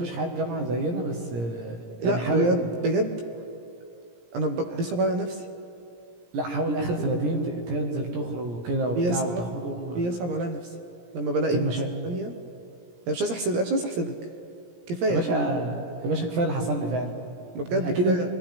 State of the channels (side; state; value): left; late; 17 ms